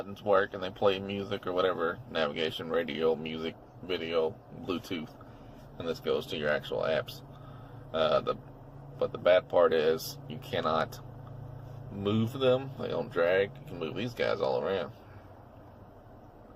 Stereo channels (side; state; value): both; identical; correlation 1.00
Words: work and they play music or whatever, navigation, radio, music, video, Bluetooth, and this goes to your actual apps. But the bad part is you cannot move them. They don't drag. You can move these guys all around,